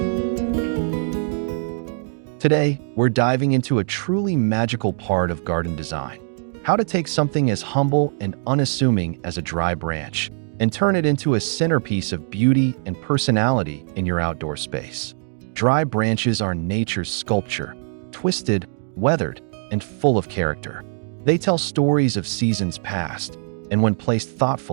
Today, we're diving into a truly magical part of garden design: how to take something as humble and unassuming as a dry branch and turn it into a centerpiece of beauty and personality in your outdoor space. Dry branches are nature's sculpture, twisted, weathered, and full of character. They tell stories of seasons past, and when placed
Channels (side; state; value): left; silent; digital silence